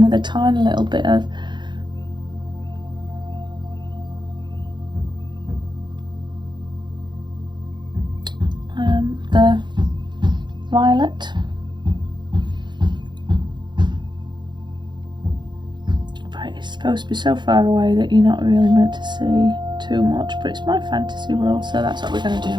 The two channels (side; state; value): left; late; 0.22 ms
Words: with a tiny little bit of the violet. It's supposed to be so far away that you're not really meant to see too much, but it's my fantasy world, so that's what we're going to